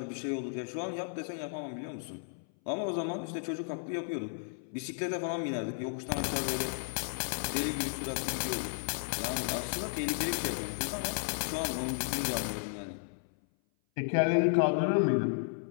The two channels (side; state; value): right; silent; 55 dB below the other